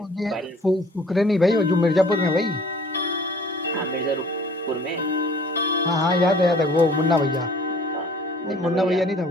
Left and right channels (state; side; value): normal; both; correlation 0.52